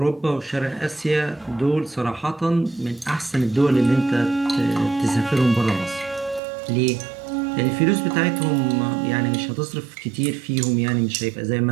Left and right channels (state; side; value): drops out; left; at 6.4 s